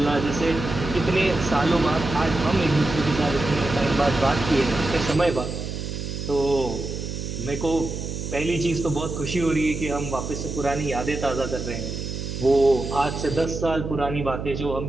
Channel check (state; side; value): noise; right; hum, 6 dB below the sound